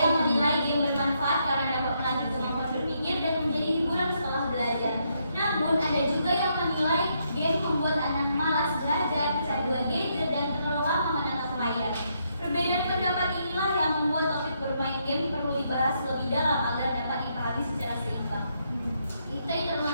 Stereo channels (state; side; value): inverted; both; correlation -0.77